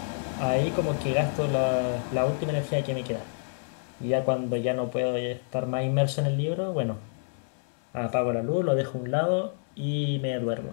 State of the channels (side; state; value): right; silent; digital silence